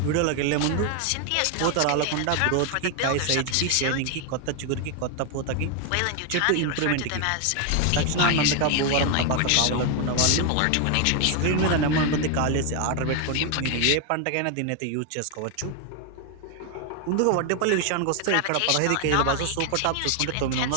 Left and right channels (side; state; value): both; different; correlation 0.01